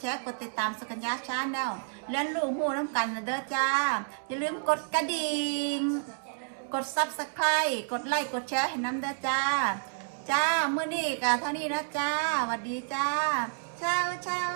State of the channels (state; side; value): silent; left; digital silence